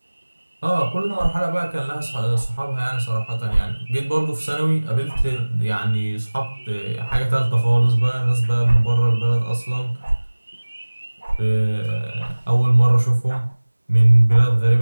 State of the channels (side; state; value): both; inverted; correlation -1.00